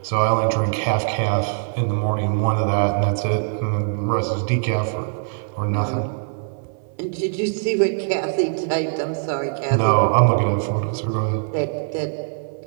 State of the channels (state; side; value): silent; left; 60 dB below the other